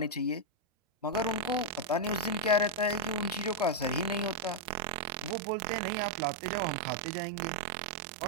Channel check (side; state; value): left; drops out; at 5.4 s